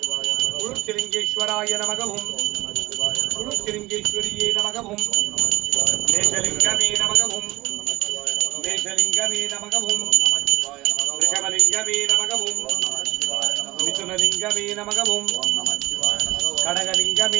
குருச்சிலிங்கேஸ்வராய நமகவும் குருச்சிலிங்கேஸ்வரியே நமகவும் மேஷலிங்கமே நமகவும் மேஷலிங்கமே நமகவும் ரிஷபலிங்கமே நமகவும் மிதுனலிங்கமே நமகவும்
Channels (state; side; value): quieter; left; 19.7 dB